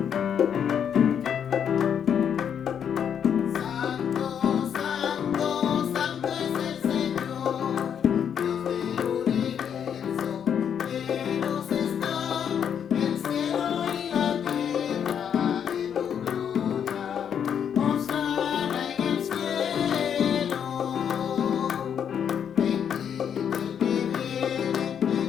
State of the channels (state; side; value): quieter; right; 8.3 dB